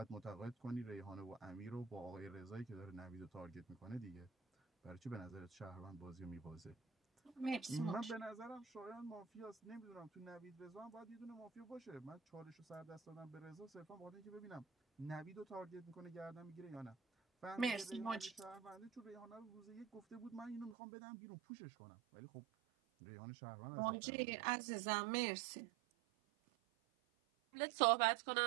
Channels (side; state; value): left; drops out; at 20.8 s